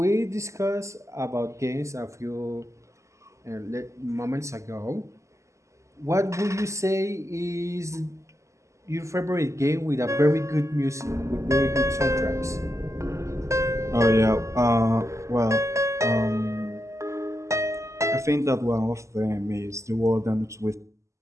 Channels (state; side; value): late; left; 0.14 ms